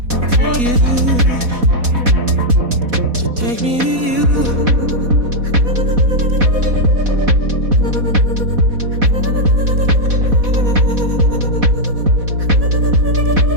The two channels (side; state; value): left; late; 4.1 ms